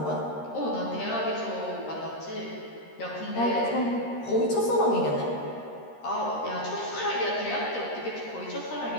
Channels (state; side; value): late; right; 13 ms